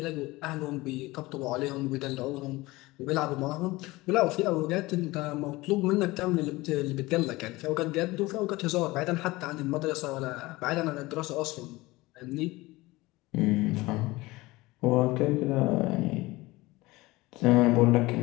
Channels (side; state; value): right; quieter; 20.6 dB